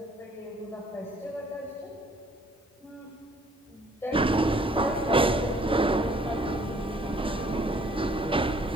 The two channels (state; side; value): normal; both; correlation 0.60